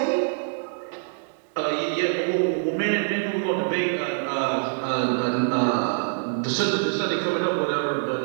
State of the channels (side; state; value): left; silent; digital silence